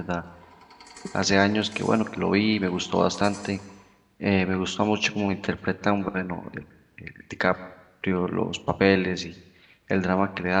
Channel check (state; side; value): identical; both; correlation 1.00